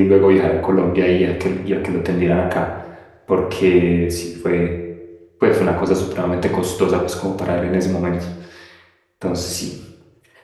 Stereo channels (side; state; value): both; identical; correlation 1.00